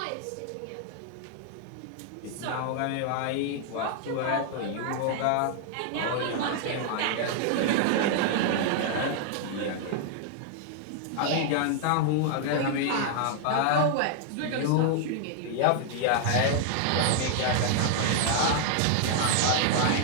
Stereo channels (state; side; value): different; both; correlation 0.00